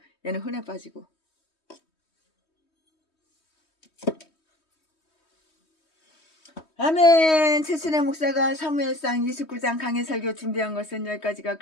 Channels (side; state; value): right; late; 3.2 ms